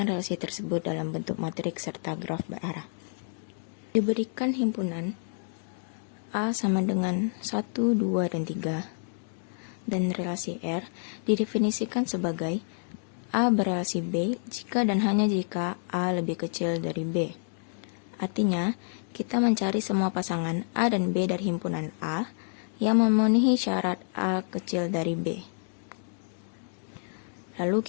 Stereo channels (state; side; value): silent; right; digital silence